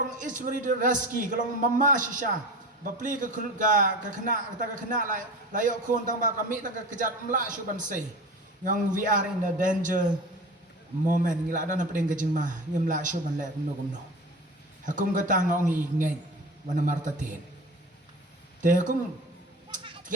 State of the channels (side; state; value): both; normal; correlation 0.33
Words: ismeri de raski kalong mama shisha bapli ka kena ta ka kena la yo kon tang ba kami ta ka kejat mla shu ban sei yang we are in the danger moment ngila dan pedeng ka jingma ngimla shu ban le kumno hakum ka ta ngong i ngai wana marta ten te hakum